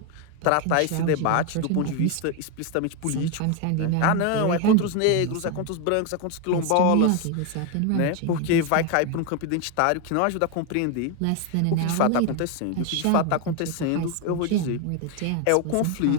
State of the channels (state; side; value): different; both; correlation 0.01